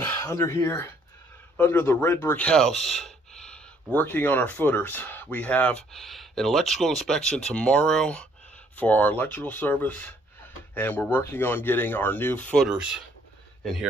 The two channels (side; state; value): both; normal; correlation 0.64